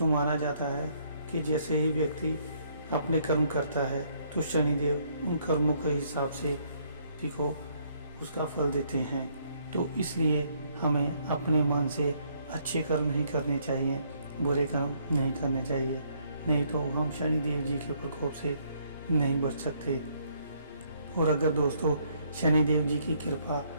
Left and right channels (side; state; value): both; inverted; correlation -0.68